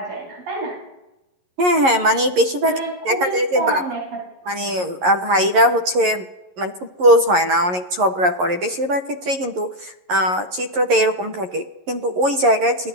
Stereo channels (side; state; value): left; late; 11 ms